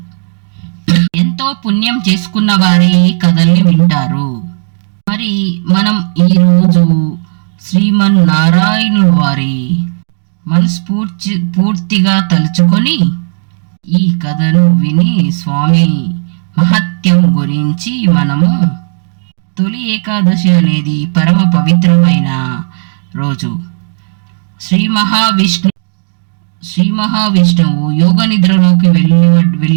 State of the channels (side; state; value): left; silent; digital silence